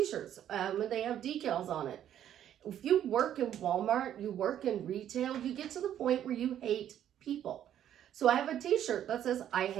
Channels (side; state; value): left; quieter; 10.6 dB